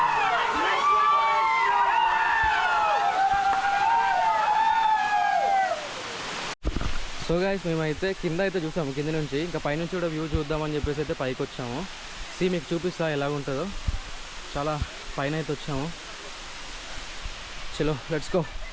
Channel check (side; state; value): both; identical; correlation 1.00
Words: సో గైస్, మేమైతే కింద అయితే చూసాము, కింద నుంచి. ఇంకా పైనుంచి కూడా వ్యూ చూద్దామని చెప్పేసి అయితే పైకి వచ్చాము. మీకు చూపిస్తా ఎలా ఉంటుందో. చాలా పైన అయితే వచ్చాము. చలో లెట్స్ గో.